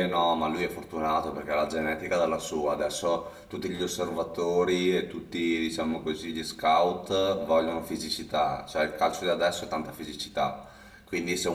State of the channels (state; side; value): identical; both; correlation 1.00